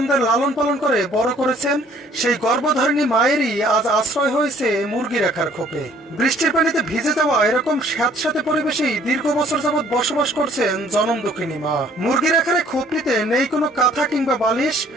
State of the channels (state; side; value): normal; both; correlation 0.58